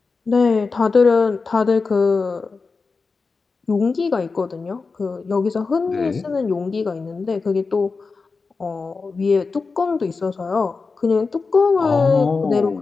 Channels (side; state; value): right; quieter; 4.4 dB